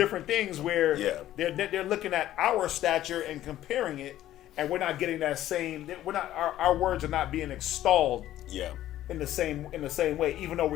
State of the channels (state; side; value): quieter; right; 13.3 dB